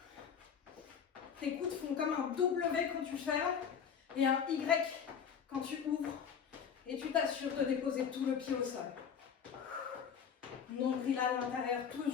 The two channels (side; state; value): right; quieter; 7.4 dB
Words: Tes coudes font comme un W quand tu fermes et un Y quand tu ouvres. Et tu t'assures de déposer tout le pied au sol. Nombril à l'intérieur,